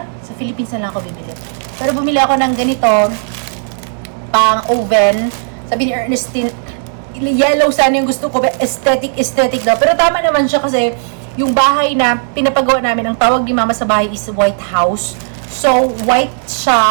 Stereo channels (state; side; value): silent; left; digital silence